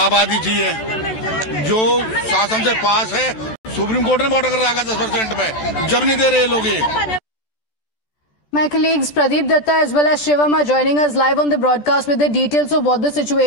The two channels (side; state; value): right; late; 14 ms